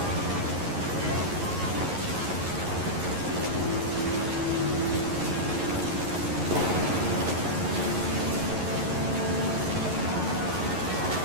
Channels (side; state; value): left; late; 11 ms